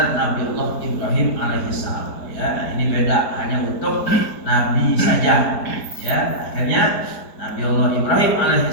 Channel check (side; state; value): right; late; 4.7 ms